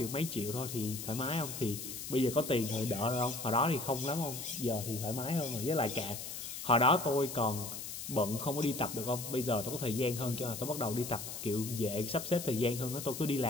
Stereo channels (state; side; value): noise; left; hiss, 7 dB below the sound